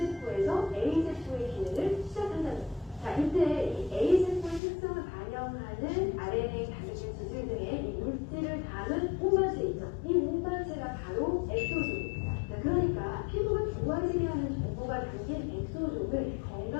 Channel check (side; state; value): right; drops out; at 4.6 s